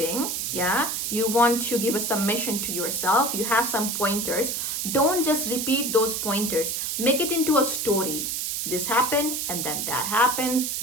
yeah? You want to give a submission to yourself. You have some pointers. Don't just repeat those pointers. Make it into a story. This happened and then that happens.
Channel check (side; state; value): right; noise; hiss, 2 dB below the sound